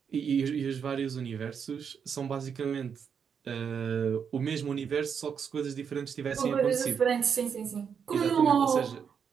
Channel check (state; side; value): quieter; left; 7.0 dB